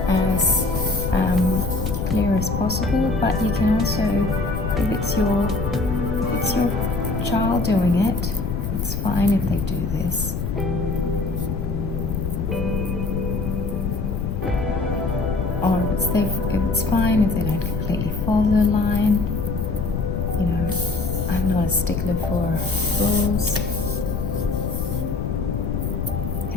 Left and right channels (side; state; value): left; noise; rumble, 2 dB below the sound